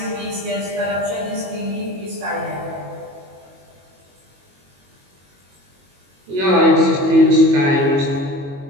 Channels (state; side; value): late; left; 22 ms